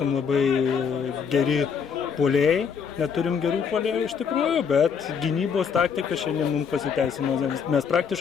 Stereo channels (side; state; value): right; quieter; 6.6 dB